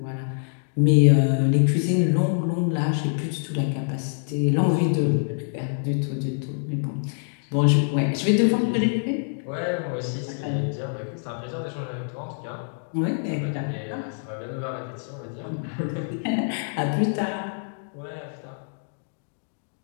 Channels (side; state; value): right; silent; digital silence